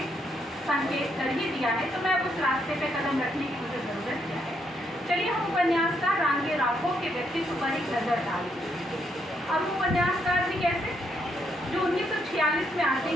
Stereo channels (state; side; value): normal; both; correlation 0.75